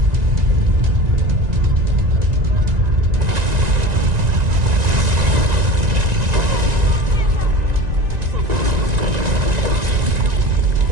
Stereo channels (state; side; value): late; left; 1.9 ms